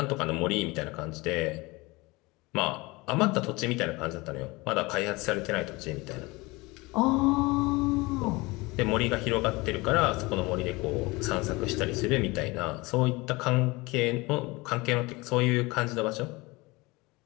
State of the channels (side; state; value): right; quieter; 23.4 dB